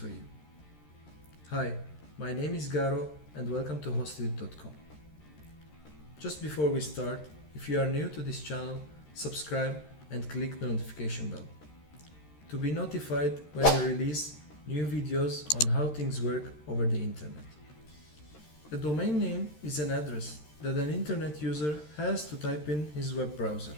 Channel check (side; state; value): right; late; 13 ms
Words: you. Hi, my name is Garo and welcome to Hostedit.com. Just before we start, if you are new to this channel, subscribe and click the notification bell to be notified when we release new videos on how things work over the internet. A domain name is an address that an internet user has to type in his web browser